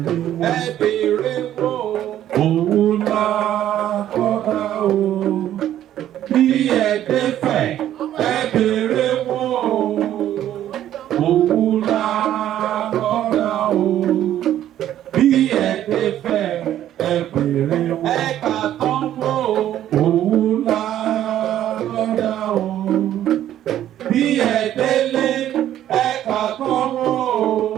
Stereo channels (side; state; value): left; quieter; 11.8 dB